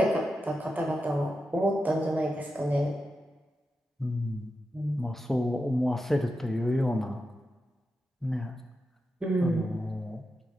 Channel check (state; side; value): normal; both; correlation 0.89